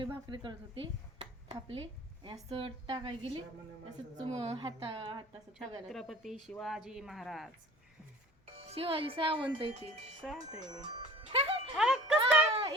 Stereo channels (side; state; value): both; normal; correlation 0.45